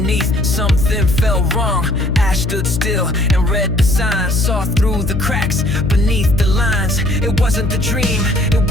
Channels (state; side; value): noise; left; hum, 3 dB below the sound